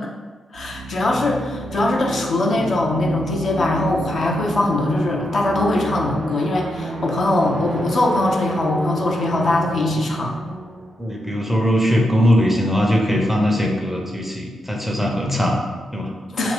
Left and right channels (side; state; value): both; normal; correlation 0.84